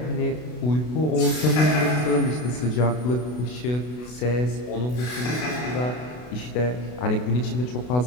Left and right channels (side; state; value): right; late; 32 ms